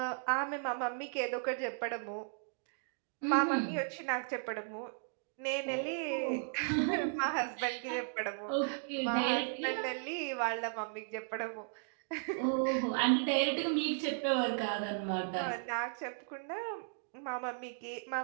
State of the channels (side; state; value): left; silent; digital silence